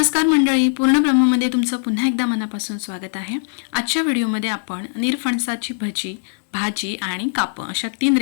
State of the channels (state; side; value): silent; right; digital silence